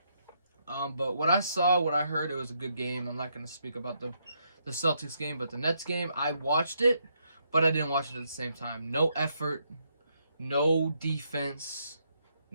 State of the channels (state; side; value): inverted; both; correlation -0.76